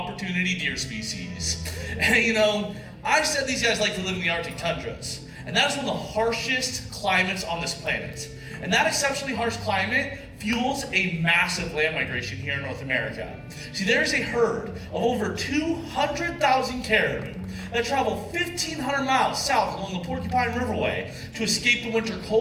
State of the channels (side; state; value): both; identical; correlation 1.00